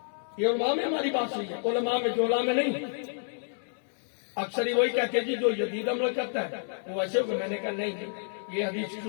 یہ علماء میں ہماری بات ہوئی ہے. علماء میں جولا میں نہیں. اکثر ہی وہی کہتے ہیں جی جو جدید عمل کرتا ہے وہ ایسے ہوگا. میں نے کہا نہیں، یہ حدیث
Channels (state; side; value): silent; right; digital silence